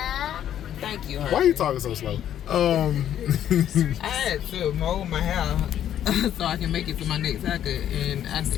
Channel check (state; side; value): quieter; right; 10.6 dB